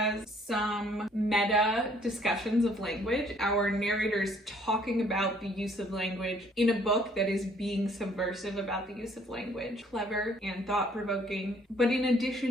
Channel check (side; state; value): both; normal; correlation 0.61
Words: some meta discussions of language. Our narrator is talking about the use of language in a book that is being subversive about the use of language. Clever and thought-provoking. But in